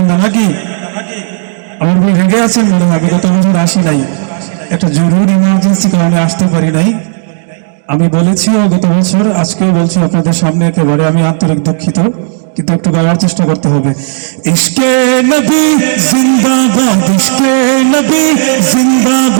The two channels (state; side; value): silent; left; digital silence